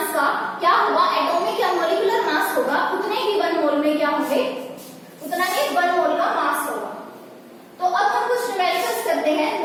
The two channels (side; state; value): both; identical; correlation 1.00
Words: का क्या होगा, एटॉमिक या मॉलिक्यूलर मास होगा, उतने ही 1 मोल में क्या होंगे, उतना ही 1 मोल का मास होगा। तो अब हम कुछ न्यूमेरिकल्स करते हैं